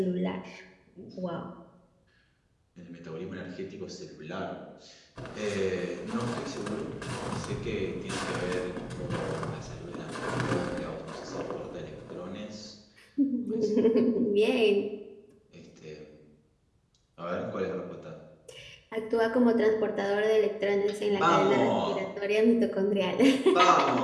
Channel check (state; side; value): identical; both; correlation 1.00